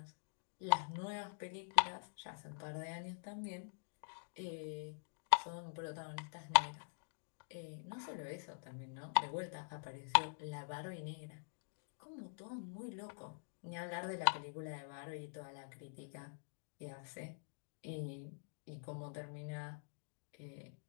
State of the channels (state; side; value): silent; right; digital silence